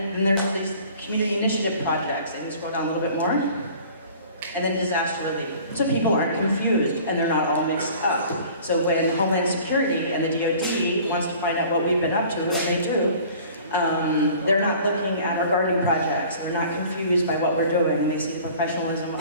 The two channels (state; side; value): inverted; both; correlation -0.48